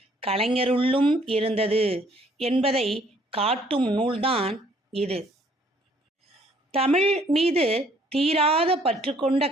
கலைஞருள்ளும் இருந்தது என்பதை காட்டும் நூல்தான் இது. தமிழ் மீது தீராத பற்று கொண்ட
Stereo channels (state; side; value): normal; both; correlation 0.62